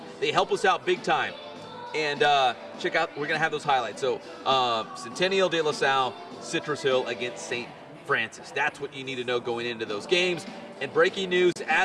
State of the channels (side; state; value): both; identical; correlation 1.00